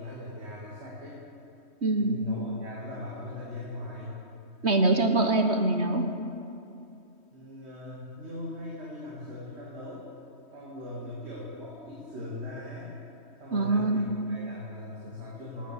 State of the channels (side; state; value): left; late; 3.2 ms